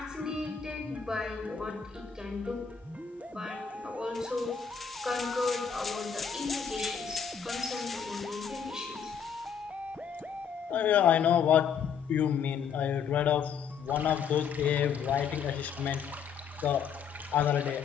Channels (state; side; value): quieter; right; 7.1 dB